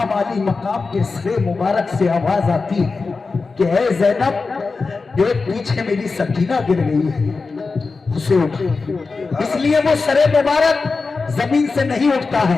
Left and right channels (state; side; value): quieter; right; 4.2 dB